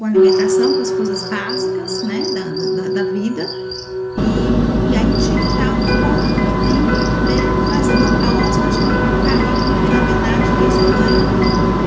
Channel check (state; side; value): identical; both; correlation 1.00